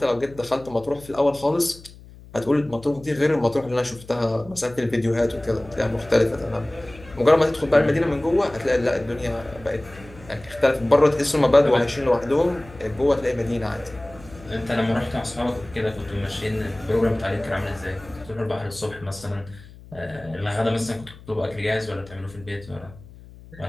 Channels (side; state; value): left; noise; hum, 20 dB below the sound